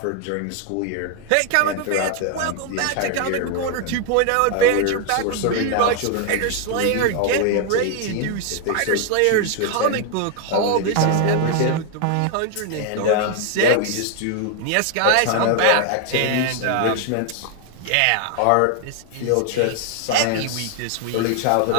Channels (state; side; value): different; both; correlation 0.00